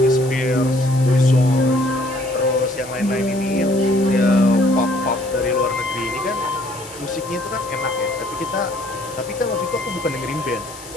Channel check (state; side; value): noise; left; hiss, 16 dB below the sound